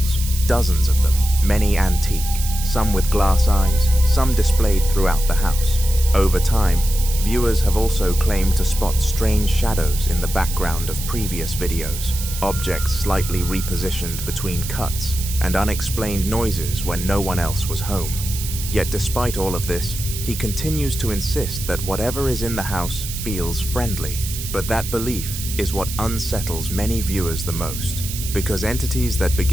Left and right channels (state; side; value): noise; right; hiss, 8 dB below the sound